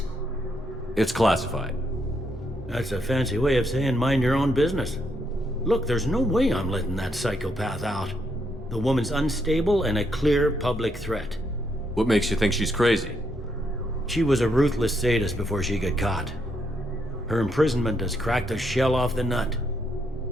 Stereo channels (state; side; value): normal; both; correlation 0.76